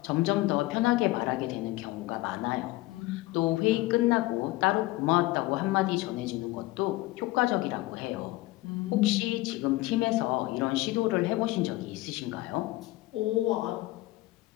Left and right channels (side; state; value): right; quieter; 19.2 dB